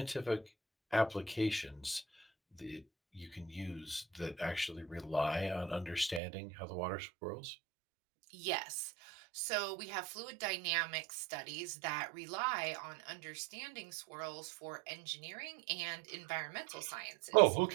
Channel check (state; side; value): drops out; left; at 6.2 s